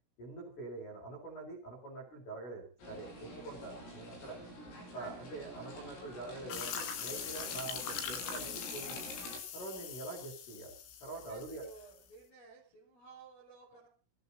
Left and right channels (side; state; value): right; late; 17 ms